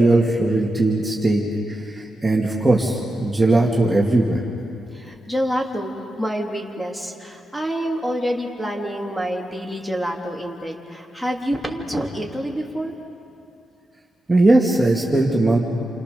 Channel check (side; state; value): both; normal; correlation 0.90